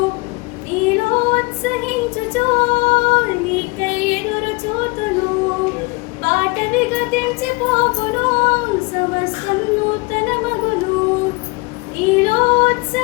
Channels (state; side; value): quieter; right; 27.0 dB